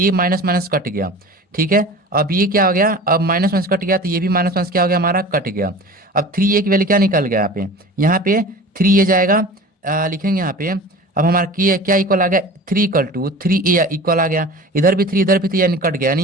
माइनस माइनस कट गया। ठीक है, अब ये क्या हो गया, अब माइनस माइनस कट गया, तो ये भी माइनस माइनस क्या हो गया हमारा, कट गया। अब 3a की वैल्यू क्या निकल गया, यहाँ पे 3a जाएगा, लिखेंगे यहाँ पे। अब हमारा क्या इक्वल आ गया, 3 इक्वल आ गया, इधर भी 3 इधर भी 3, यानी कट गया,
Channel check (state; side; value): normal; both; correlation 0.38